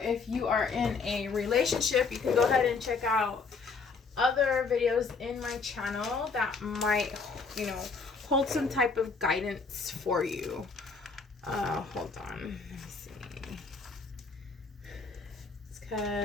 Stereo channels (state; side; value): quieter; right; 4.7 dB